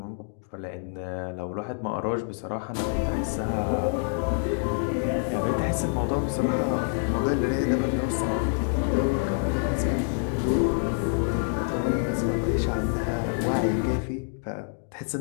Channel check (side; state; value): right; silent; digital silence